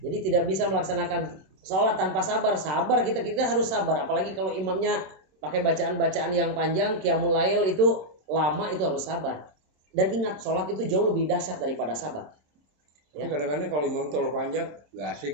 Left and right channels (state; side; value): late; left; 27 ms